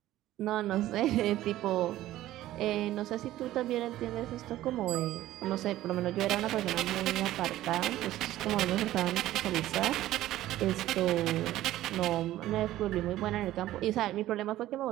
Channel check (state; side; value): quieter; left; 14.6 dB